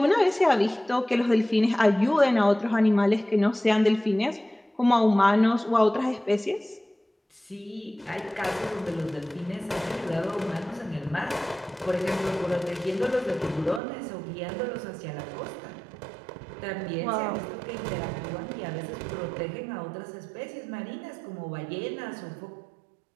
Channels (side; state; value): left; drops out; at 13.8 s